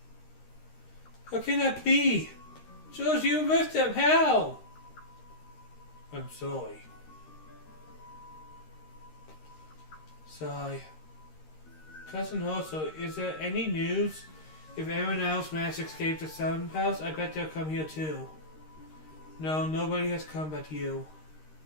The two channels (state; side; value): late; right; 13 ms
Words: How can that be? George, you with them. How? I'm sorry. Sigh. Cousin Hoso, is there any news? If anyone else managed to escape the Sun House, I bet they'll come here too. No, nobody has come but you.